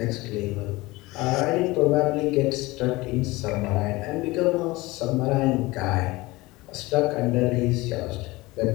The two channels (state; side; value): quieter; right; 21.1 dB